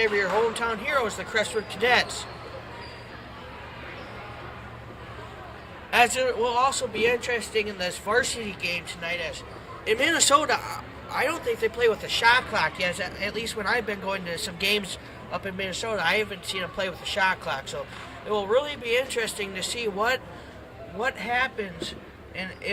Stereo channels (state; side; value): identical; both; correlation 1.00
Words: of your hometown heroes, the Crestwood Cadets. As it will also be interesting in this varsity game tonight, as in Minnesota, I don't think they play with a shot clock yet. At least when I've been going to some games up in Minnesota, I haven't seen them play with a shot clock. So it will really be interesting to see what happens and